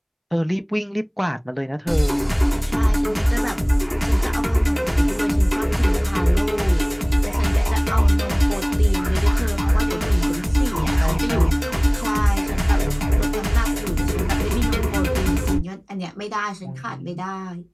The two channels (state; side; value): identical; both; correlation 1.00